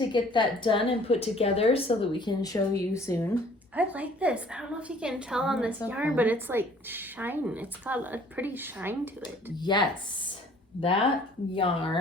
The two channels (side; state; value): both; normal; correlation 0.55